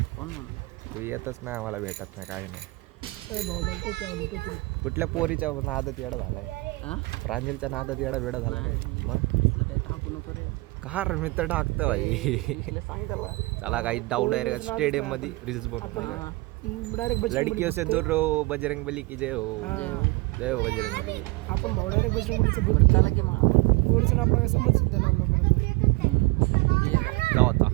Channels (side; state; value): left; quieter; 23.8 dB